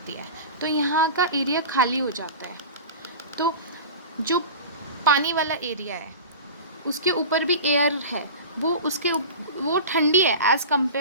है, तो यहाँ का एरिया खाली हो जाता है. तो जो पानी वाला एरिया है उसके ऊपर भी एयर है, वो ठंडी है as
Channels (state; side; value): inverted; both; correlation -0.32